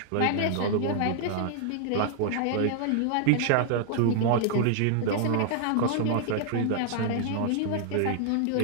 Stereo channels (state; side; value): different; both; correlation 0.00